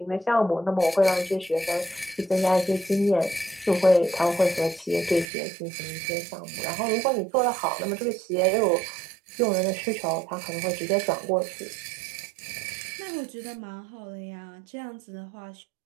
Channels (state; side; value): drops out; left; at 5.2 s